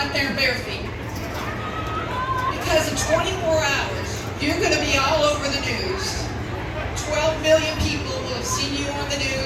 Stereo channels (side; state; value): both; identical; correlation 1.00